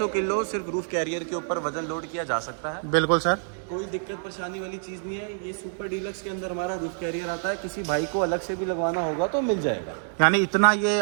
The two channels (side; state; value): left; silent; 60 dB below the other